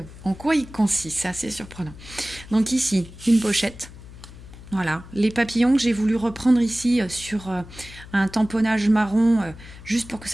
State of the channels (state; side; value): noise; left; hum, 17 dB below the sound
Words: en quoi il consiste, c'est assez surprenant. Donc ici, une pochette. Voilà, les papillons que j'ai voulu reprendre ici sur un tamponnage marron, juste pour que